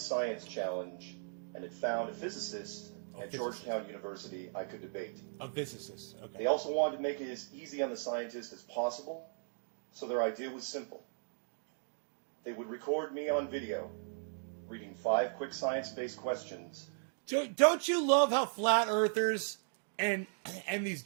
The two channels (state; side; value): silent; left; digital silence